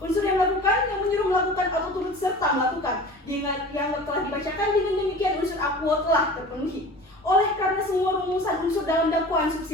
Unsur yang melakukan, yang menyuruh melakukan atau turut serta melakukan, yang telah dibacakan, dengan demikian unsur aquo telah terpenuhi. Oleh karena semua rumusan unsur dalam dakwaan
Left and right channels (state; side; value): normal; both; correlation 0.39